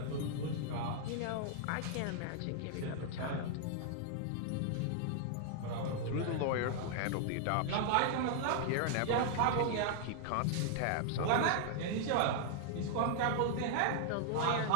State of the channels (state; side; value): different; both; correlation -0.01